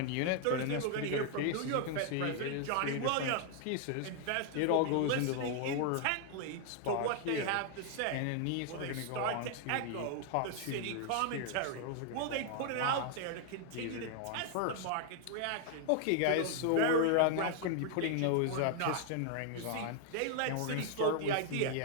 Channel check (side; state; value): both; different; correlation 0.00